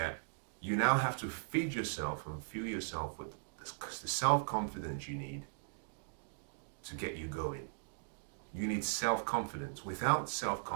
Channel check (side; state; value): left; silent; digital silence